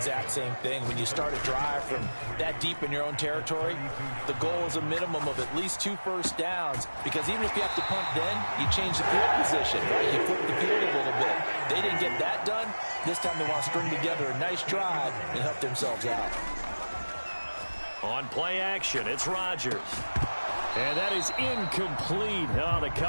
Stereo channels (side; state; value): both; inverted; correlation -1.00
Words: same thing. When you start a drive from that deep in your own territory, the goal is a minimum of at least 2 first downs, because even if you have to punt then, you change the field position, right? You flip the field a little bit. They didn't get that done. This time they want to string together a nice drive and help themselves out. On play action, it's Rodgers. And that is incomplete. Oh, the